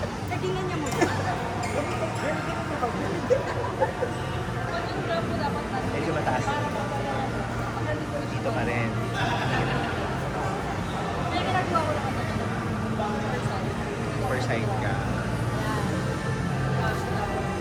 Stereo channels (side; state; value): both; identical; correlation 1.00